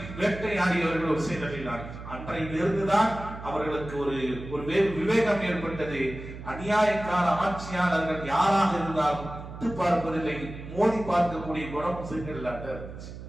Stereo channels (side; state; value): right; noise; hum, 12 dB below the sound